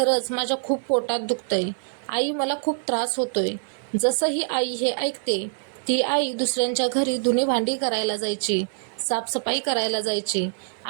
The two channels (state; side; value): silent; left; 62 dB below the other